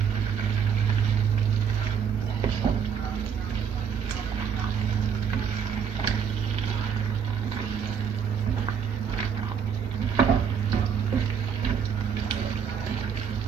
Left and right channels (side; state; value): left; quieter; 7.3 dB